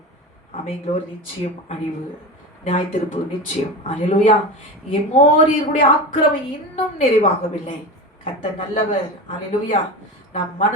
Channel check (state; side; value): normal; both; correlation 0.26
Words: அமைங்களோர் நிச்சயம் அழிவு, நியாய தீர்ப்பு நிச்சயம். அல்லேலூயா. எமோரியர்களுடைய ஆக்கிரமம் இன்னும் நிறைவாகவில்லை. கர்த்தர் நல்லவர். அல்லேலூயா. நாம்